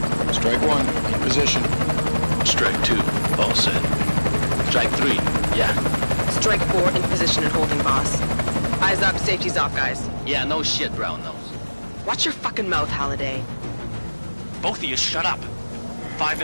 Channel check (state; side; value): inverted; both; correlation -1.00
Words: Strike 1, in position. Strike 2, all set. Strike 3, yeah. Strike 4 in position and holding, boss. Eyes up, safety's off, guys. Yeah, no shit, brown nose. Watch your fucking mouth, Halliday. Both of you shut up. 5